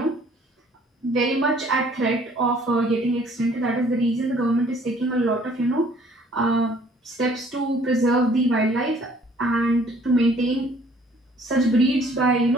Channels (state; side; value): normal; both; correlation 0.58